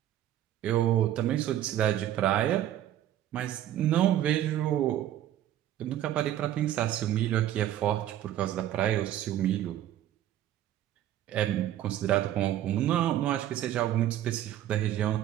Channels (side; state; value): left; quieter; 12.3 dB